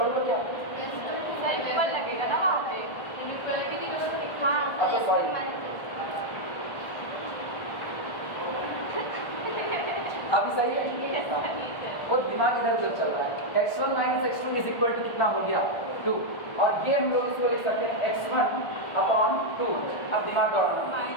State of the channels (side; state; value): right; late; 1.4 ms